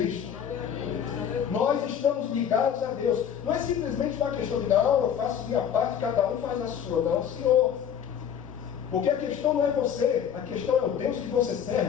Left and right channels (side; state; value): right; quieter; 8.5 dB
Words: Nós estamos ligados a Deus. Não é simplesmente uma questão de, não, eu faço minha parte, cada um faz a sua. Não, Senhor. Porque a questão não é você, a questão é o Deus que você